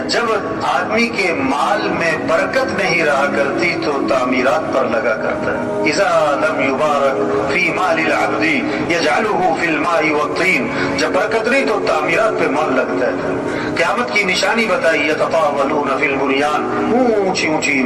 जब आदमी के माल में बरकत नहीं रहा करती तो तामीरात पर लगा करता है। इज़ा लम युबारक फी मालिल अब्दी यजअलुहु फिल माई वत्तीन, जब बरकत नहीं तो तामीरात पे माल लगता है। क़यामत की निशानी बताई, यततावलून फिल बुनियान, ऊंची ऊंची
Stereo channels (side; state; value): both; identical; correlation 1.00